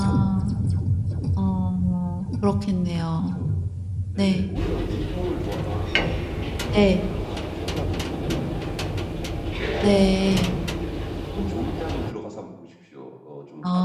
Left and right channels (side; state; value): both; identical; correlation 1.00